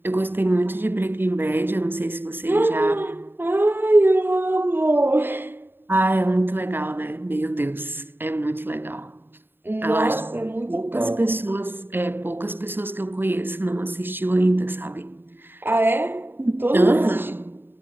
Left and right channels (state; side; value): late; left; 0.10 ms